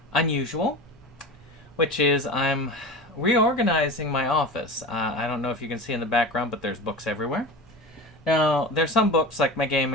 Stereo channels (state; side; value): normal; both; correlation 0.30